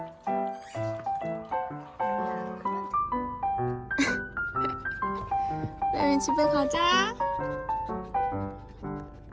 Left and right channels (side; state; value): both; identical; correlation 1.00